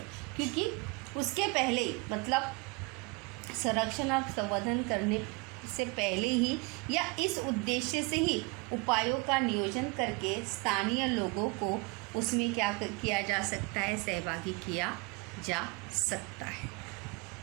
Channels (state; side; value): quieter; left; 28.2 dB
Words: क्योंकि उसके पहले मतलब संरक्षण और संवर्धन करने से पहले ही या इस उद्देश्य से ही उपायों का नियोजन करके स्थानीय लोगों को उसमें क्या किया जा सकता है, सहभागी किया जा सकता है।